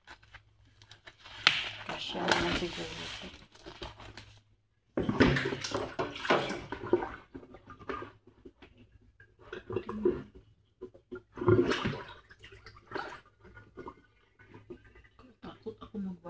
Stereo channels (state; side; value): identical; both; correlation 1.00